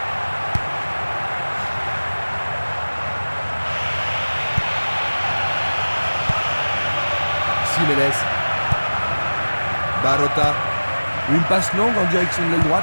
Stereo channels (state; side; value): inverted; both; correlation -1.00